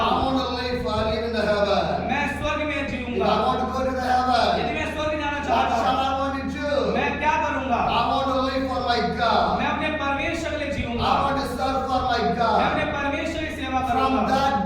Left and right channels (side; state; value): both; identical; correlation 1.00